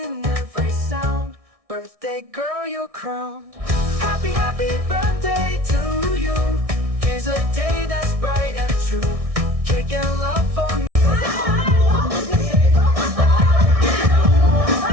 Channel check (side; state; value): left; late; 1.6 ms